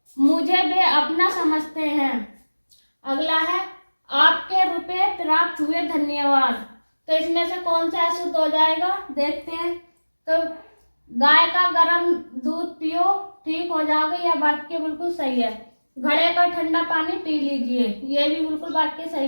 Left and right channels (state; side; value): inverted; both; correlation -1.00